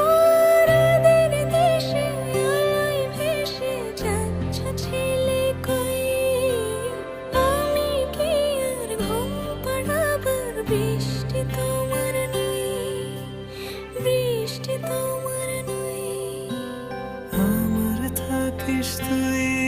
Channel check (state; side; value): identical; both; correlation 1.00